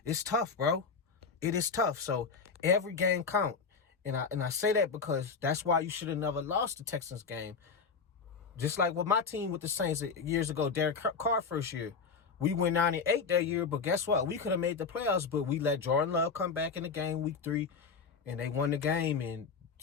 it's tough, bro. It is tough. So every game count. And I say that because that's why you should have never lost the Texans game. Just like with my team with the Saints years ago, Derek Carr first year. We went 9-8 that year, but guess what? We could have made the playoffs, but we let Jordan Love come back in the game week 3, and they won the game, and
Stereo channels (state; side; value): quieter; right; 5.3 dB